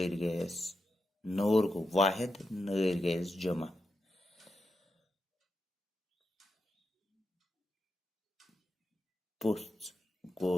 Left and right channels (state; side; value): normal; both; correlation 0.87